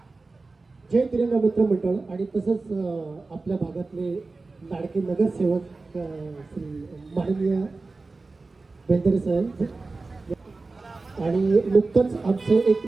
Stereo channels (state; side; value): quieter; left; 3.7 dB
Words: जय तिरंगा मित्र मंडळ आणि तसंच आपल्या भागातले लाडके नगरसेवक श्री माननीय बेंदरे साहेब आणि नुकतंच आमचं एक